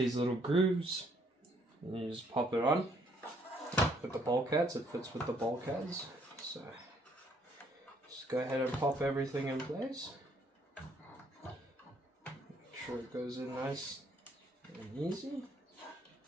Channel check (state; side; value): normal; both; correlation 0.66